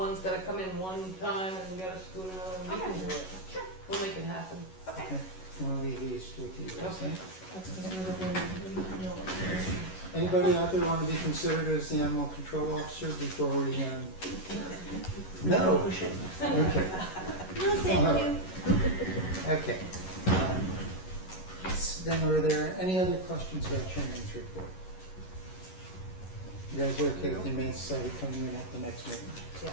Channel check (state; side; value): late; right; 11 ms